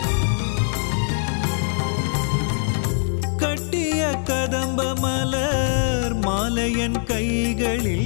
கட்டிய கதம்ப மலர் மாலையன்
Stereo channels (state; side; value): silent; right; 64 dB below the other